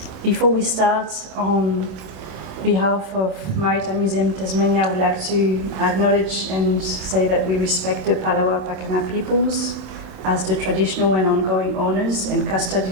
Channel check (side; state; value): left; late; 27 ms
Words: Before we start, on behalf of Maritime Museum Tasmania, I would like to acknowledge and say that we respect the Palawa Pakana peoples as the traditional and ongoing owners and